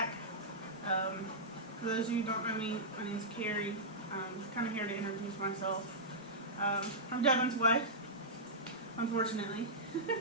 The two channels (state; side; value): normal; both; correlation -0.13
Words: For those of you who don't know me, my name's Carrie. I'm kind of here to introduce myself. I'm Devin's wife, unfortunately.